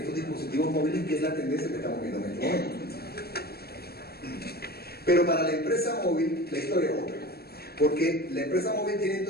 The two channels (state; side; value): late; right; 0.46 ms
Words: dispositivos móviles, que es la tendencia que estamos viendo en este momento. Pero para la empresa móvil la historia es otra, porque la empresa móvil tiene